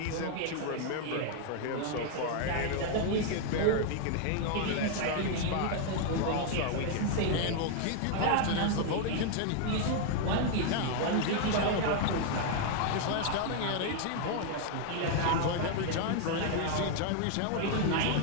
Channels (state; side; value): different; both; correlation 0.00